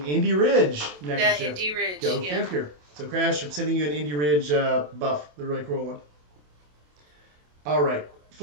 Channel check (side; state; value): left; late; 27 ms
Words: Indy Ridge neckerchief. The Indy Ridge. Go figure. So Crash, I'm sending you an Indy Ridge buff, the really cool one. All right.